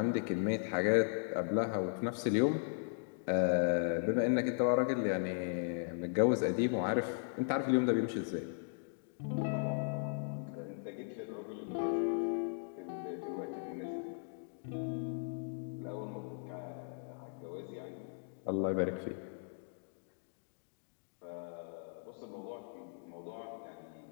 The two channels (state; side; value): silent; right; digital silence